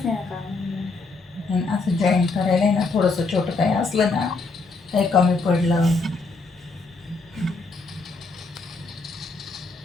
नाही काम. असं जॉईन करायला ना थोडंसं छोटं काही असलं ना, काही कमी पडलं,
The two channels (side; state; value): right; quieter; 3.8 dB